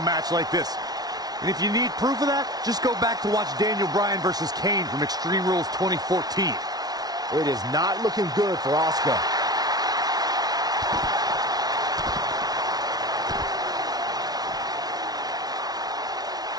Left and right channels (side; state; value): left; late; 0.19 ms